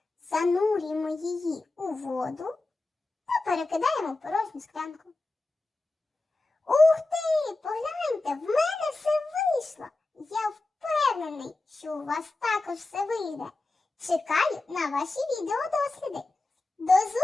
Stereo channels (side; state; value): right; quieter; 3.1 dB